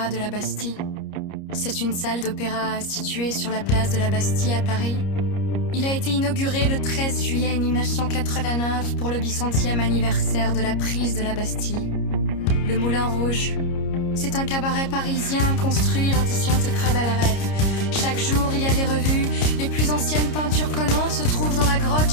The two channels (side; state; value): right; late; 30 ms